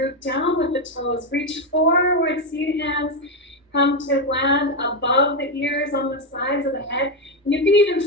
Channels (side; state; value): both; normal; correlation 0.07